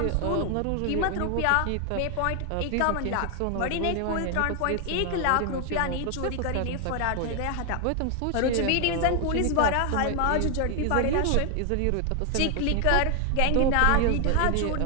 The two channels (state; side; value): different; both; correlation 0.00